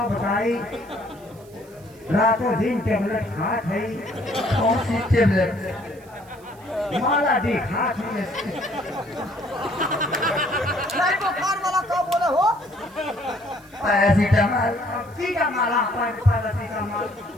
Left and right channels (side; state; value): right; noise; hiss, 27 dB below the sound